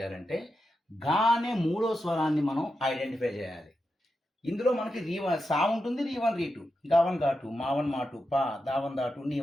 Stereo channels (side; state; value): both; normal; correlation 0.88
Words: గానే 3వ స్వరాన్ని మనం ఐడెంటిఫై చేయాలి. ఇందులో మనకి సా ఉంటుంది, రీ1 రీ2, గావన్ గా2, మావన్ మా2, పా దావన్ దా2,